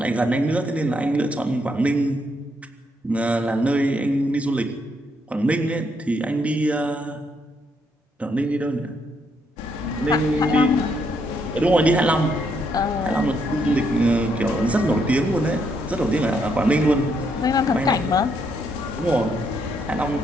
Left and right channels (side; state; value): both; normal; correlation 0.75